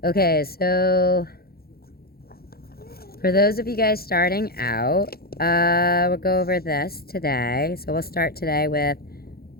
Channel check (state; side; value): late; right; 0.44 ms